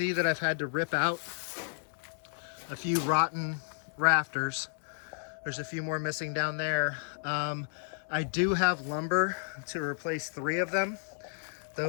that I've had to rip out a few rotten rafters. There's a few more missing down there. I do have lumber to replace 3 of them.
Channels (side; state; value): right; silent; digital silence